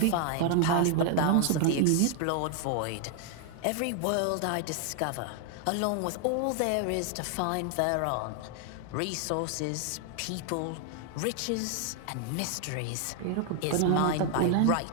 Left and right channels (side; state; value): both; different; correlation 0.00